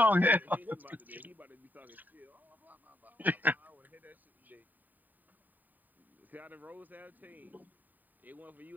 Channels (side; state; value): left; late; 0.086 ms